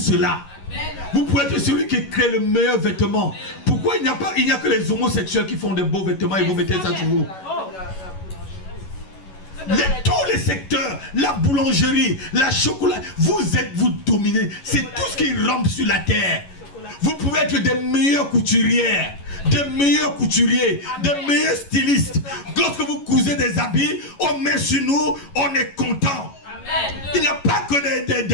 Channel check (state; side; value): late; right; 11 ms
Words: Vous pouvez être celui qui crée le meilleur vêtement. Pourquoi il n'y a que les homosexuels qui font des beaux vêtements et vous mettez ça sur vous? Tous les secteurs, la boulangerie, la chocolat, vous dominez. C'est tout ce qui rampe sur la terre. Vous pouvez être des meilleures couturières, des meilleurs couturiers, des meilleurs stylistes. Lorsque vous cousez des habits, on met sur nous, on est content. Il n'y a pas que